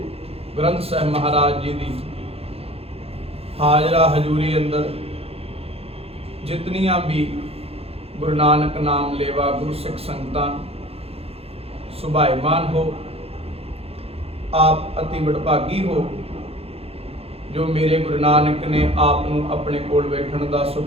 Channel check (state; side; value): late; left; 0.29 ms